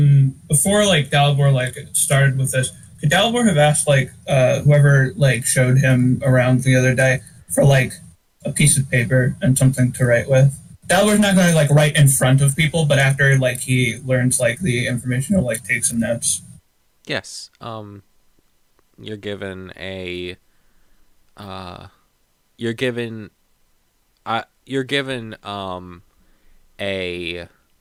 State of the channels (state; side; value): identical; both; correlation 1.00